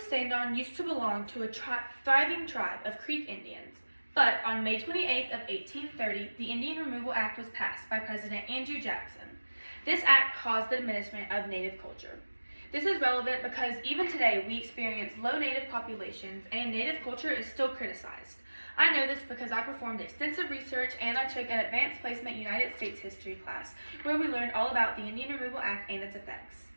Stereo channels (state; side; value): inverted; both; correlation -1.00